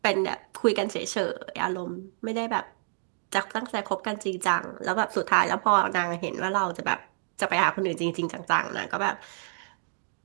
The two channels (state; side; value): silent; left; digital silence